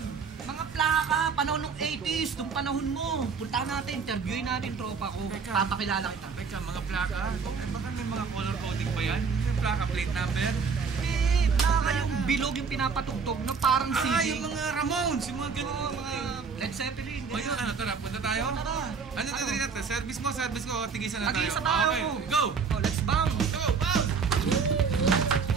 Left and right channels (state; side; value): quieter; left; 5.5 dB